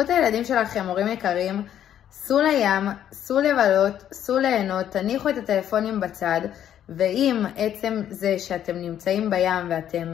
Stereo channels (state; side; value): quieter; right; 10.4 dB